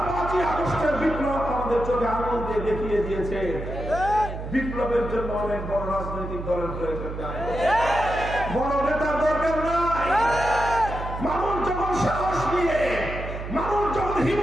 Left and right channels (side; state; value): right; noise; hum, 7 dB below the sound